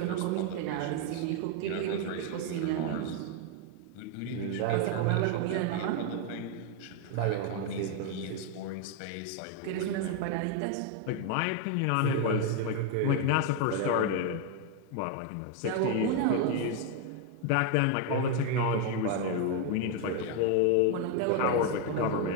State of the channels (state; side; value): different; both; correlation 0.01